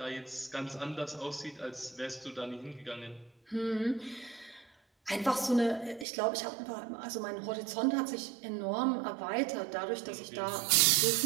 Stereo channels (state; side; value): drops out; left; at 6.1 s